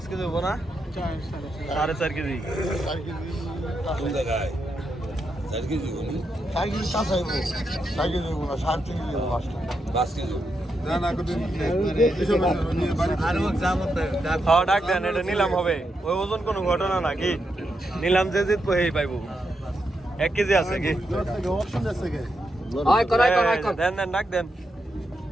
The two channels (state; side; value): normal; both; correlation 0.84